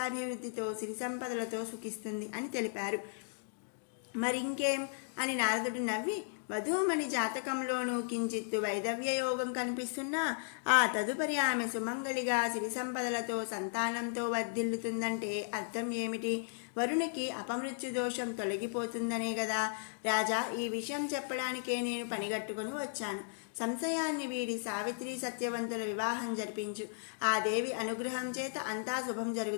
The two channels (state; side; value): silent; right; digital silence